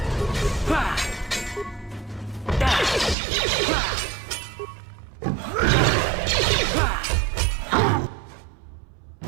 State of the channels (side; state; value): left; drops out; at 3.2 s